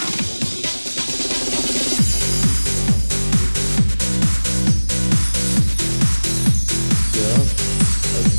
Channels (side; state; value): both; inverted; correlation -1.00